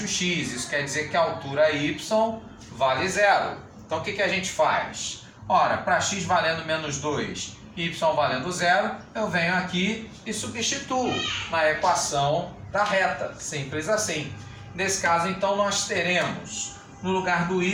x. Isso quer dizer que a altura y vale 0. Então, o que a gente faz? Ora, para x valendo menos 2, y valendo 0, eu venho aqui e substituo na equação da reta, simples assim. Nesse caso, então, nós teremos, no lugar do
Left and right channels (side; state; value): both; identical; correlation 1.00